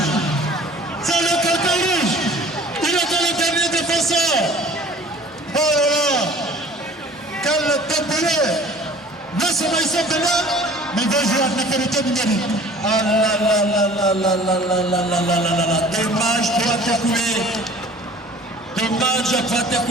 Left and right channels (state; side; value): normal; both; correlation 0.48